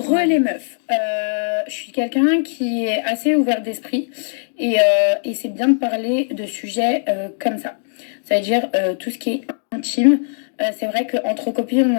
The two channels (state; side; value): silent; right; digital silence